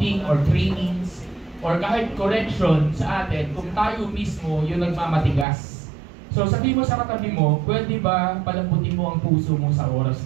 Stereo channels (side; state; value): left; drops out; at 5.5 s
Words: or trainings, or kahit correction sa atin kung tayo mismo yung nagmamatigas. So sabi mo sa katabi mo, pwede ba palambutin mo ang puso mo sa oras